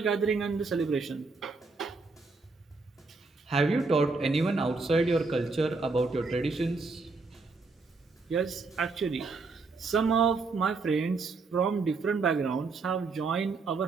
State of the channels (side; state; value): left; quieter; 4.0 dB